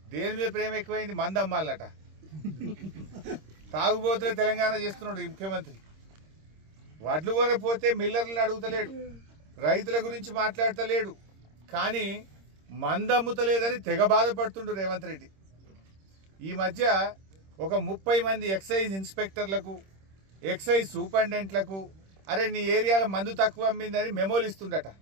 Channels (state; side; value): late; left; 26 ms